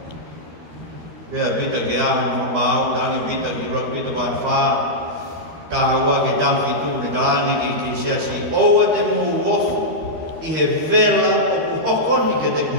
Bea bita ke aho mau dangi bita ki rak bita ban fa kahawa ke dam fitu ne dangi ki sia si oa te mu wof i he vela o ku hokoni ke te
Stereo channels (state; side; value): late; left; 13 ms